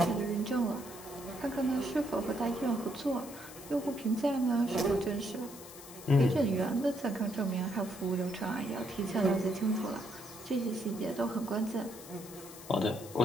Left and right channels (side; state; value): left; noise; hiss, 16 dB below the sound